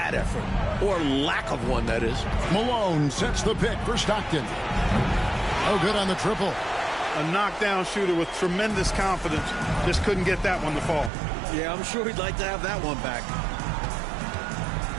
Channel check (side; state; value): left; drops out; at 11.1 s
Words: effort. Or lack of one, that is. Malone sets the pick for Stockton. Oh, good on the triple. A knockdown shooter with tremendous confidence. Just couldn't get that one to fall. Yeah, I'm sure he'd like to have that one back.